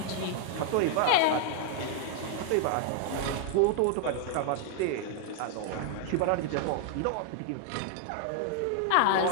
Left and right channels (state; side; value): different; both; correlation 0.00